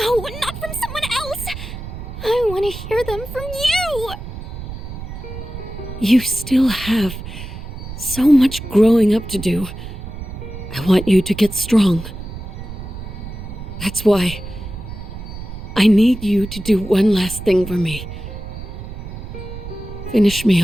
not from someone else. I want to hear them from you. You still have so much growing up to do. I want you to get strong. That's why I need you to do one last thing for me. Finish me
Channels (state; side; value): noise; right; rumble, 10 dB below the sound